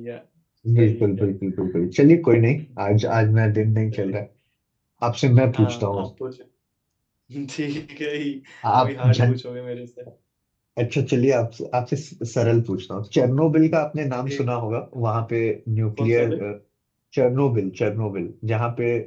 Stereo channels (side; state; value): both; identical; correlation 1.00